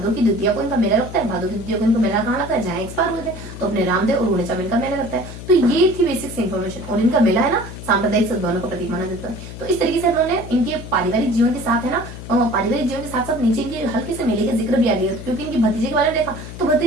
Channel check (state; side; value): noise; left; hum, 11 dB below the sound